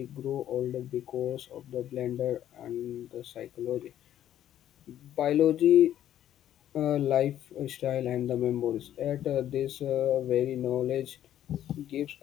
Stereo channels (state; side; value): quieter; right; 11.5 dB